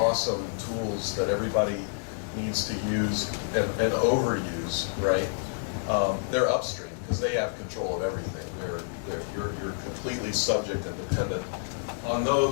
tools that everybody needs to use and overuse, right? They're upstream because they have control of everything. You're completely subject and dependent on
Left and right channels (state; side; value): silent; right; digital silence